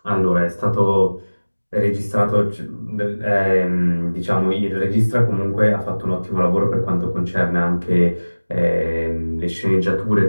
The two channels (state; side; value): inverted; both; correlation -1.00